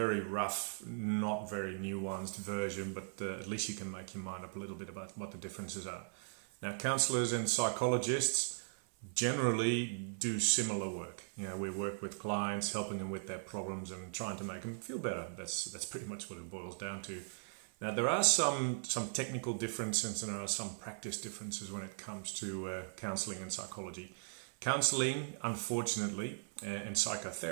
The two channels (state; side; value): silent; left; 52 dB below the other